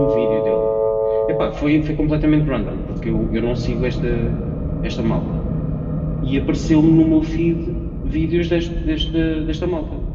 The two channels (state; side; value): identical; both; correlation 1.00